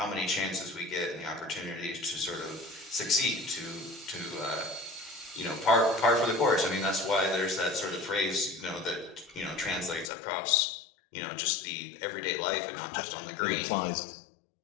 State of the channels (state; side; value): drops out; right; at 10.1 s